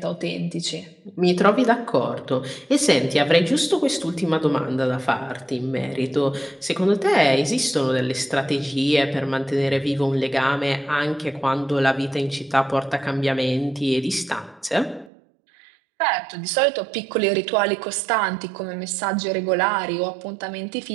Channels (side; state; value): left; drops out; at 15.1 s